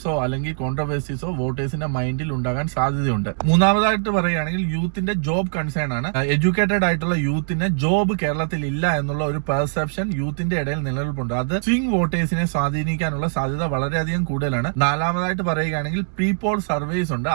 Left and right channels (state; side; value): silent; left; digital silence